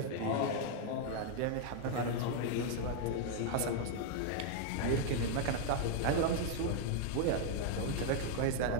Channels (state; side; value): different; both; correlation 0.00